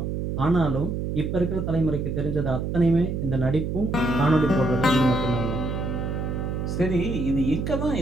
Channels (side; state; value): right; noise; hum, 2 dB below the sound